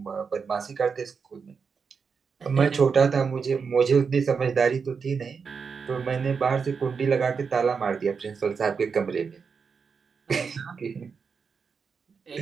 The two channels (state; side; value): quieter; left; 5.7 dB